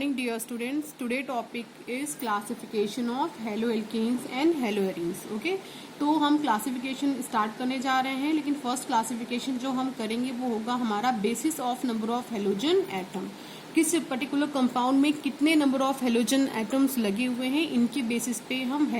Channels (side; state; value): both; identical; correlation 1.00